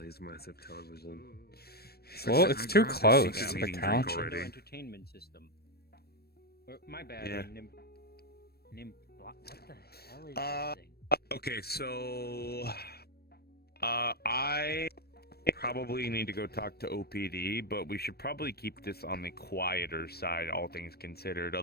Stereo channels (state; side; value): late; right; 0.46 ms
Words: massive television. Well, it's too close Yeah, to the meeting drink couch. already. No entertainment system. Or, my bad. Yeah. What the hell is this thing? Okay, so I probably need to go talk to OPD, but we should probably keep this on the quieter side, all things considered.